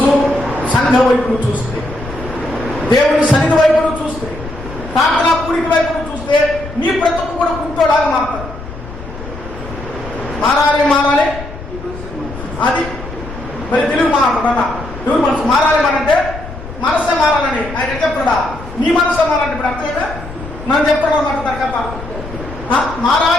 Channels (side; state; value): left; noise; rumble, 12 dB below the sound